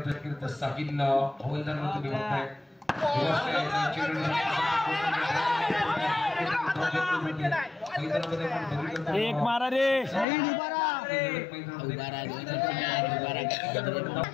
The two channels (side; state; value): right; drops out; at 10.2 s